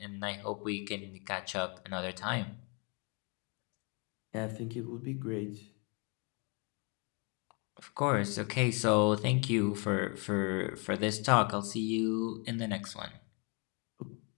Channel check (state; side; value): quieter; right; 33.3 dB